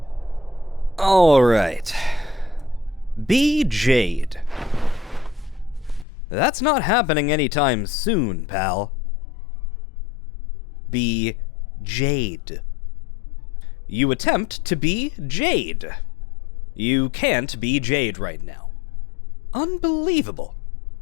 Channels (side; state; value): right; drops out; at 6.1 s